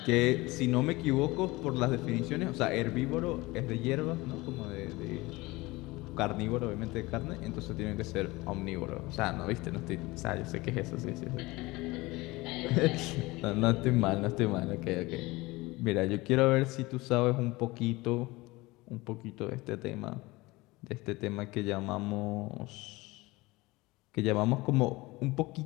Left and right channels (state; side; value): quieter; right; 21.5 dB